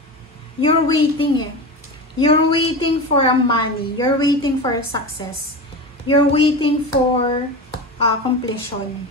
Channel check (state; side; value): normal; both; correlation 0.25